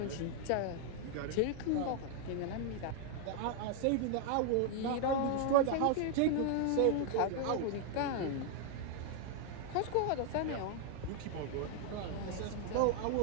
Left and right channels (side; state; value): both; different; correlation 0.00